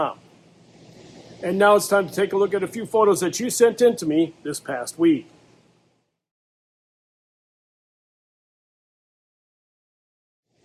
And now it's time to take a look at a few photos that you sent in to me this past week.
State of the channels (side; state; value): both; identical; correlation 1.00